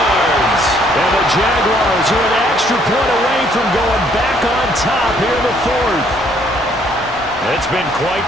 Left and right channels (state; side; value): normal; both; correlation 0.65